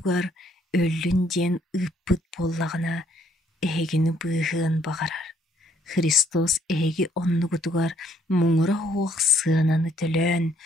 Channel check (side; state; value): both; normal; correlation 0.67